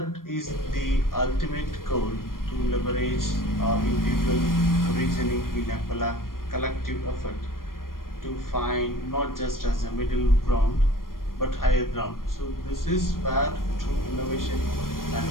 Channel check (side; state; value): right; late; 0.91 ms